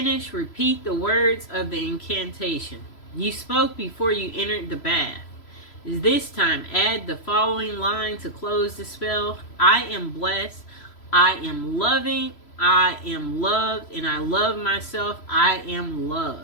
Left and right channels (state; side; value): late; right; 3.0 ms